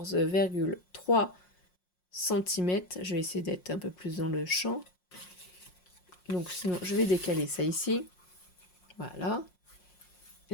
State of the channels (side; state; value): right; late; 5.6 ms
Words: cm. Je vais essayer d'être un peu plus dans le champ. Donc sinon, je vais décaler ça ici. Voilà.